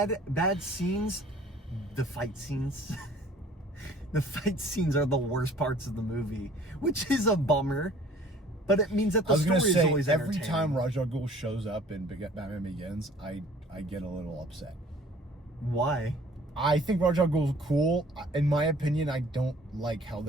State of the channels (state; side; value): normal; both; correlation 0.52